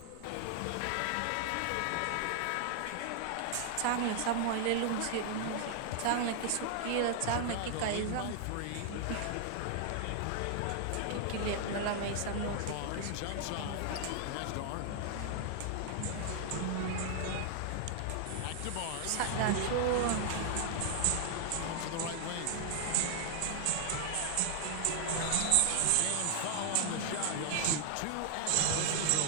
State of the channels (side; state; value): both; different; correlation 0.00